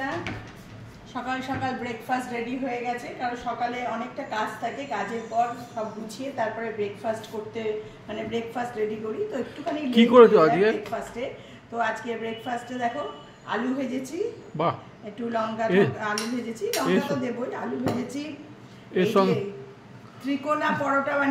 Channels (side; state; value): both; identical; correlation 1.00